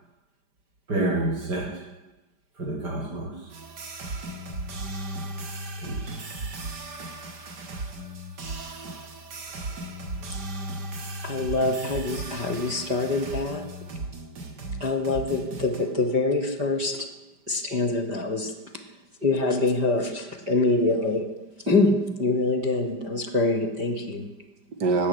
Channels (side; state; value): left; late; 5.0 ms